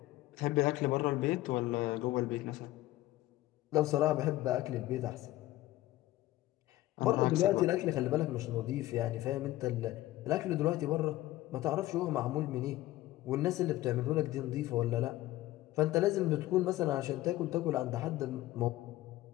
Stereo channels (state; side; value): quieter; right; 16.3 dB